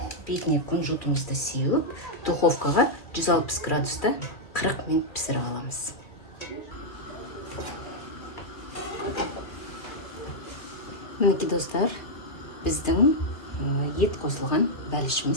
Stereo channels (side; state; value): right; late; 2.3 ms